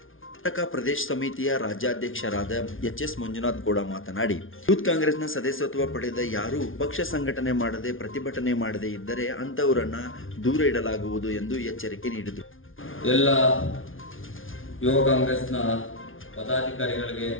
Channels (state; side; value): late; right; 0.58 ms